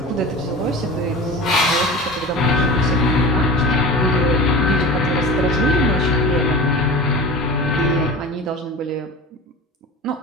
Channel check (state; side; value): normal; both; correlation 0.33